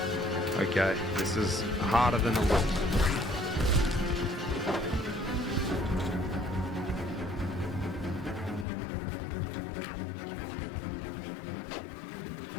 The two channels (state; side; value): drops out; right; at 8.7 s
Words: Okay, this is harder than it looks.